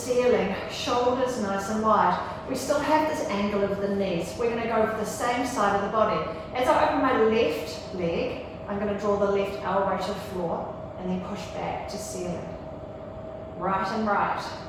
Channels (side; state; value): both; identical; correlation 1.00